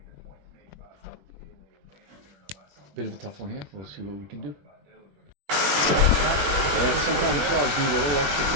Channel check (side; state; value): left; late; 20 ms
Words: the point made by Bit of a tough one here. We'll see what we can do. Yeah, sometimes jobs need a little extra